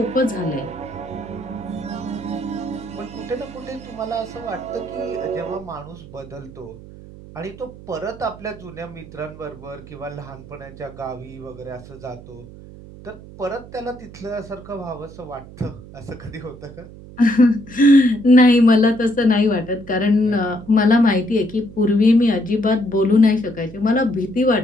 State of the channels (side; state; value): right; noise; hum, 17 dB below the sound